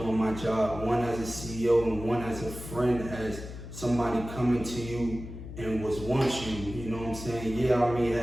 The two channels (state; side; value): noise; left; hum, 11 dB below the sound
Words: my job, one as a CEO and one as a friend, as somebody coming to you and wants you, you know what I'm saying? Yeah, I may